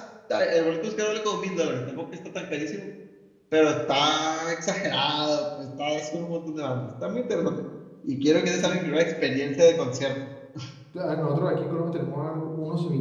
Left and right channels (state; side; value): identical; both; correlation 1.00